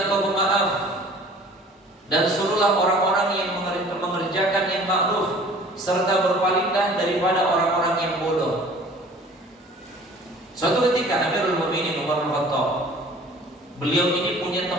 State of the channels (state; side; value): normal; both; correlation 0.48